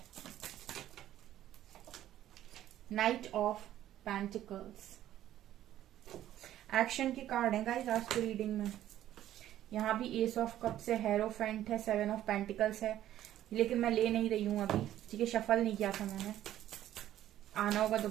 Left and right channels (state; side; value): quieter; left; 12.6 dB